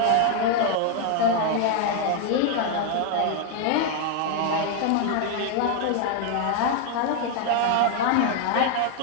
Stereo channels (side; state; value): both; different; correlation 0.00